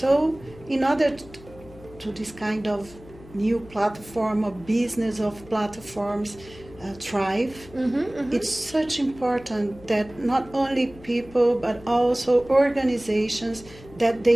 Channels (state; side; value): noise; left; hum, 20 dB below the sound